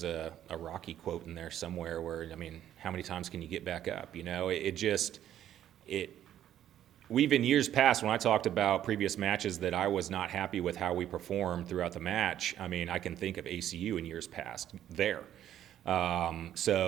a Rocky quote in there somewhere where, I mean, how many times can you get back up? We've in years past, when I talked about previous matches that I was not happy with how we performed throughout the match, I mean, I can think of ACU in years past there.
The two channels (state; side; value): quieter; left; 11.3 dB